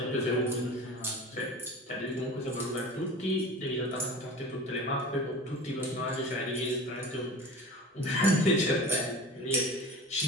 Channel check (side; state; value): both; normal; correlation 0.36